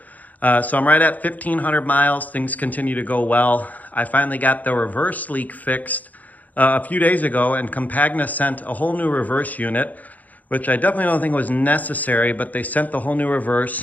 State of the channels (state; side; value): late; right; 0.079 ms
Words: So I'm right at 1,500 miles. Things continue to go well. I finally got the reverse leak fixed a few days ago, and Campagna sent a whole new reverse unit, which I definitely don't think was necessary, but they sent the whole new